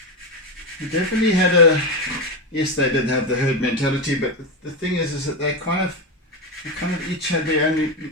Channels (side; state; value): both; normal; correlation 0.12